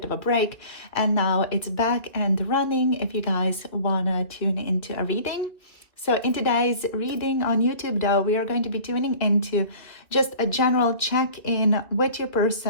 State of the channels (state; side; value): late; right; 2.4 ms